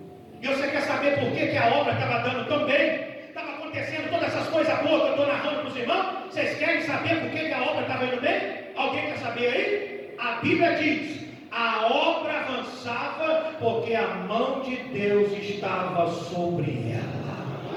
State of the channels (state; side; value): identical; both; correlation 1.00